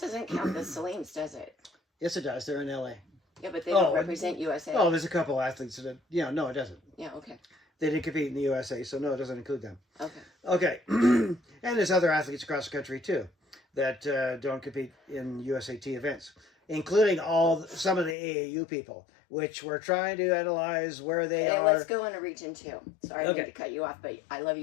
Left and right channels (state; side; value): drops out; right; at 18.2 s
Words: doesn't count the Saleens, does it? Yes, it does. They're in LA. Yeah, but they don't represent USA. Oh, there's a couple athletes that, no, it doesn't. Yeah, okay. They didn't compete in the USA, so no, it doesn't include them. Okay. Okay. And there's other athletes across the country, too, that don't compete in USAT events, including some of the AAU people, which we're trying to analyze where they are. Let's go into region 2. Sorry, I need to cut you off, but I love